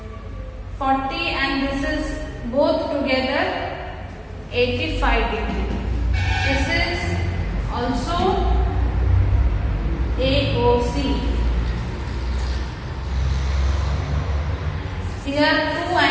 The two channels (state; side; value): identical; both; correlation 1.00